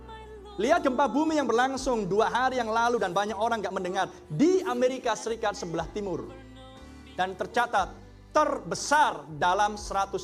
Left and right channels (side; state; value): both; identical; correlation 1.00